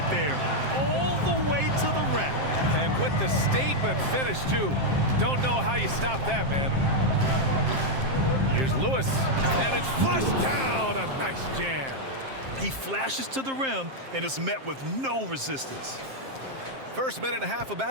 there. All the way to the rack. And with the statement finish, too. Don't know how you stop that, man. Here's Lewis, and it's flushed down. A nice jam. He flashes to the rim and is met with no resistance. First minute and a half of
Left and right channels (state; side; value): late; left; 7.6 ms